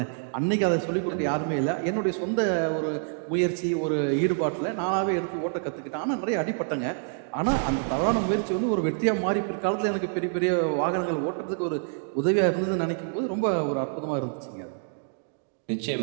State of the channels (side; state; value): left; silent; 60 dB below the other